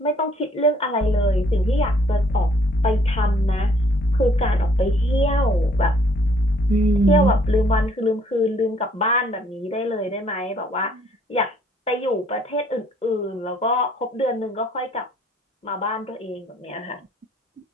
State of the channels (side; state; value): both; normal; correlation 0.63